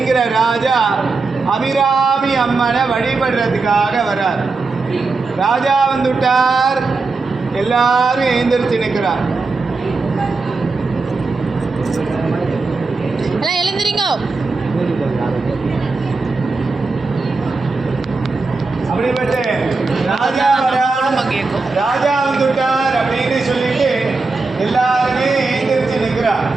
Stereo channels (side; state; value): left; quieter; 3.9 dB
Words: ராஜா அபிராமி அம்மனை வழிபடுறதுக்காக வரார். ராஜா வந்துட்டார், எல்லாரும் எழுந்திருச்சு நிற்கிறார். எழுந்திரிங்க. அப்படிப்பட்ட ராஜா ராஜா வந்துட்டார் அப்படின்னு சொல்லிட்டு எல்லாருமே எழுந்திருச்சு நிற்கிறார்.